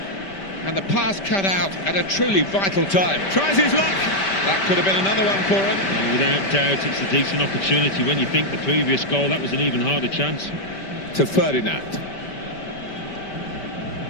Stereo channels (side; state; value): right; late; 5.1 ms